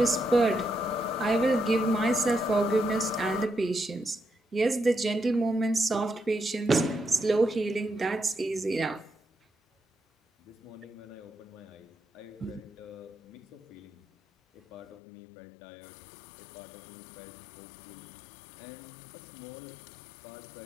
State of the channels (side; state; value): right; drops out; at 15.0 s